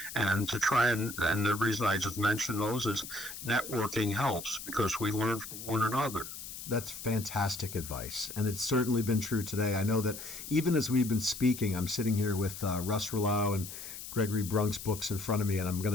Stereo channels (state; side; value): noise; left; hiss, 10 dB below the sound